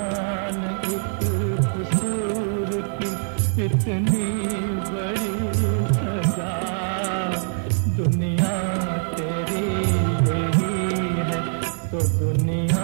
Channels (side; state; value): left; silent; digital silence